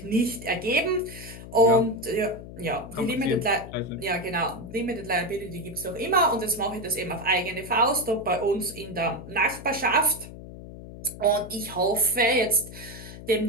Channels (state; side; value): noise; left; hum, 14 dB below the sound